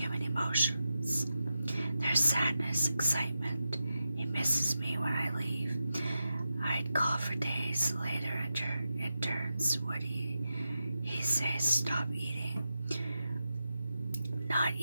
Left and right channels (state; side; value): inverted; both; correlation -0.89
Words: his excitement. He misses me when I leave. I'd call for days later in turns. Would he say stop eating? Not